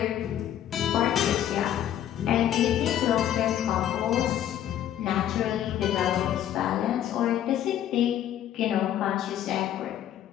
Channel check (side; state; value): right; quieter; 11.1 dB